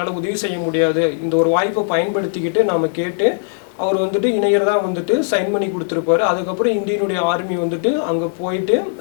உதவி செய்ய முடியாது, இந்த ஒரு வாய்ப்பை பயன்படுத்திக்கிட்டு நாம் கேட்டு அவர் வந்துட்டு இணையறதா வந்துட்டு சைன் பண்ணி கொடுத்துருப்பாரு. அதுக்கப்புறம் இந்தியனுடைய ஆர்மி வந்துட்டு அங்கே போயிட்டு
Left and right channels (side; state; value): right; silent; digital silence